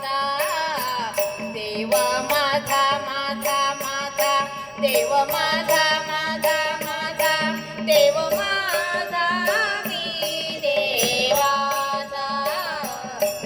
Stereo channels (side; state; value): both; identical; correlation 1.00